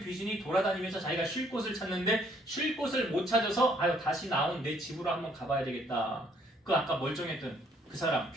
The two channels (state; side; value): normal; both; correlation 0.65